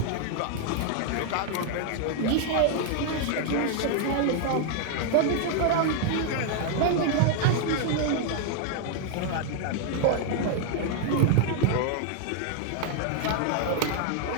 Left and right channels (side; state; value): both; different; correlation 0.00